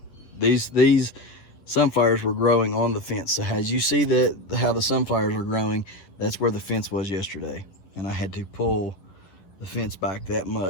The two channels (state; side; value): late; right; 11 ms